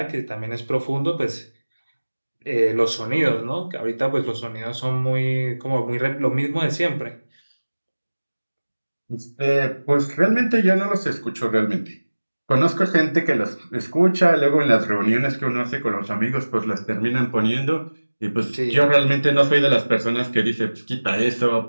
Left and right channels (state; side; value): inverted; both; correlation -1.00